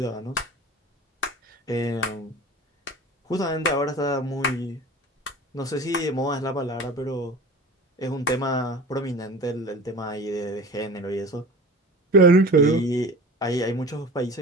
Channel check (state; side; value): normal; both; correlation 0.37